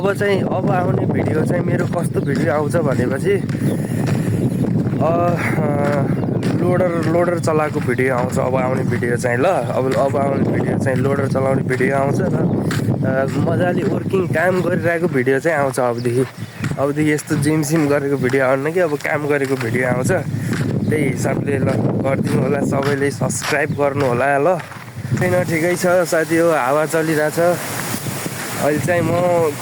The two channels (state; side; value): identical; both; correlation 1.00